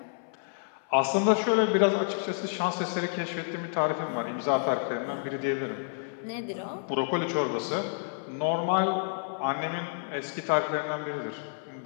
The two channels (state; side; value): silent; right; 58 dB below the other